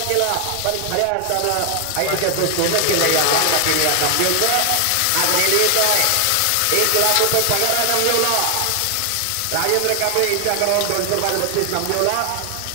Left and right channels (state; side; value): different; both; correlation 0.00